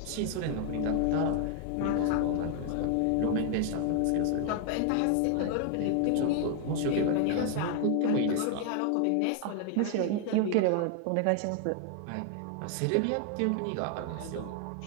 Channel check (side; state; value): both; different; correlation 0.00